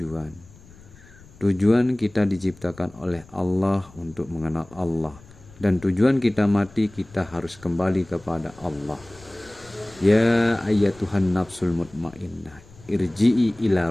Tujuan kita diciptakan oleh Allah untuk mengenal Allah, dan tujuan kita mati kita harus kembali kepada Allah. Ya ayyatuhan nafsul mutmainnah, irji'i ila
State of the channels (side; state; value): left; noise; rumble, 23 dB below the sound